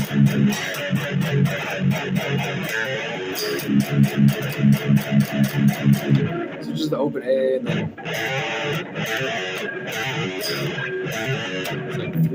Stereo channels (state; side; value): identical; both; correlation 1.00